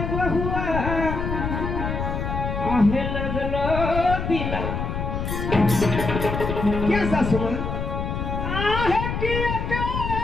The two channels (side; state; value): left; noise; rumble, 3 dB below the sound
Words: बहुआ, आहे लगलो दिला। क्या सासू माँ? आहे की